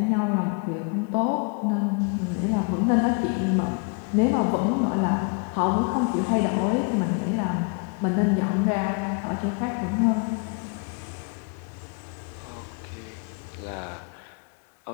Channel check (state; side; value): quieter; right; 36.3 dB